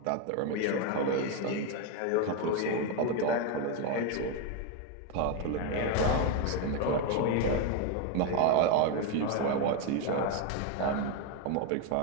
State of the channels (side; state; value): both; different; correlation 0.02